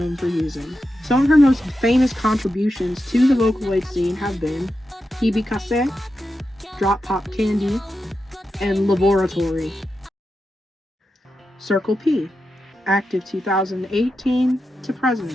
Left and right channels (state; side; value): normal; both; correlation 0.89